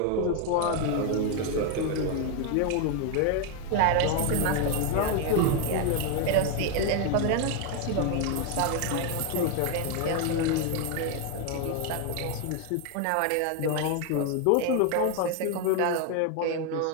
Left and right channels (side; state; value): both; different; correlation 0.01